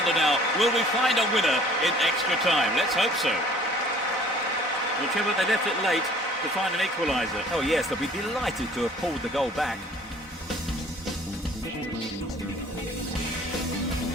now, will we find a winner in extra time? Let's hope so. Well, Trevor, they left it late to find an equaliser. Oh yes, they'll be delighted to have pulled the goal back.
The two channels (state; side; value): normal; both; correlation 0.53